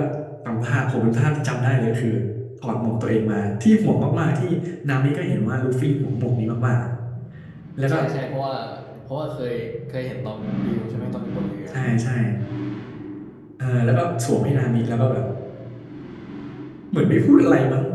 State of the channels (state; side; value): identical; both; correlation 1.00